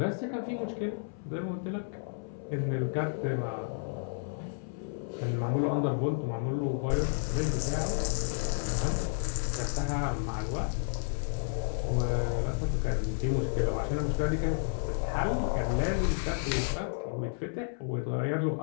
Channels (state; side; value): silent; right; 57 dB below the other